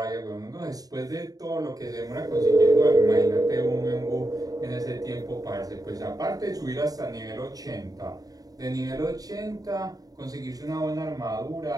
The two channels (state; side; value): late; left; 0.18 ms